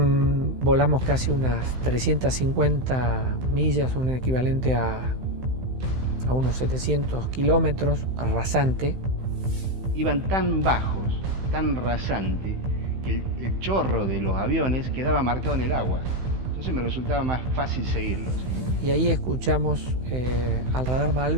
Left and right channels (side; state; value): left; late; 16 ms